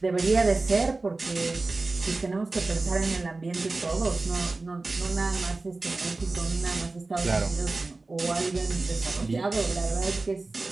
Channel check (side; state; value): left; quieter; 3.4 dB